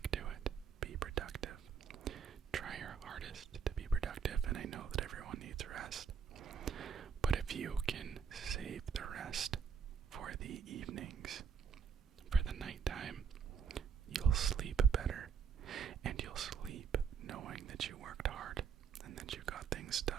to it. Be productive.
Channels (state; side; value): quieter; left; 6.7 dB